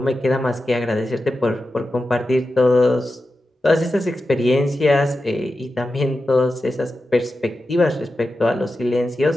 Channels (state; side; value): normal; both; correlation 0.91